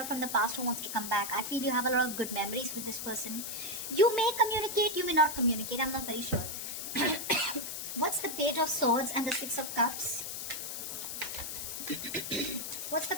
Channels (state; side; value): noise; left; hiss, 5 dB below the sound